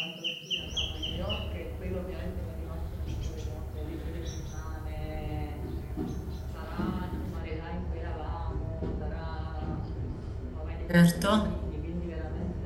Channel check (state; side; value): identical; both; correlation 1.00